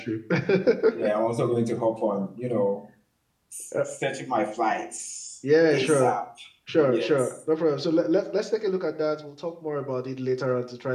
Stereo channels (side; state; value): both; identical; correlation 1.00